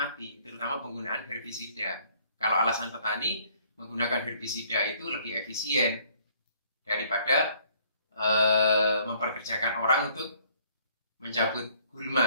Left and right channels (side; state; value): both; inverted; correlation -0.61